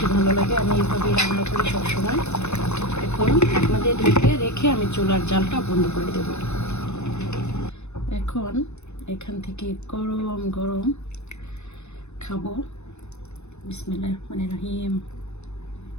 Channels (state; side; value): late; right; 0.81 ms